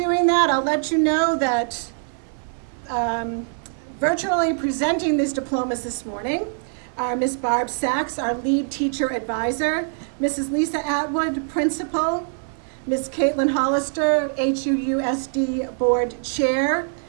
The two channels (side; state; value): left; silent; 63 dB below the other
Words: that, I'll let you know that virtually presenting these diplomas this morning are Ms. Barb Sachs, our lead teacher advisor, Mrs. Lisa Atwood, principal, Ms. Caitlin Hollister, HUUSD board chair,